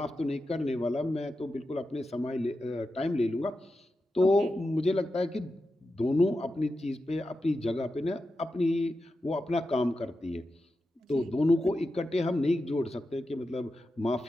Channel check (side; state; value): both; normal; correlation 0.90